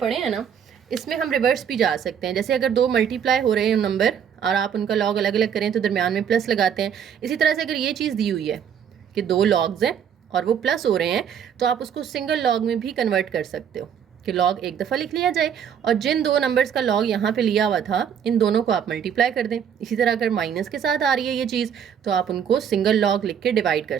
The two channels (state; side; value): quieter; left; 8.2 dB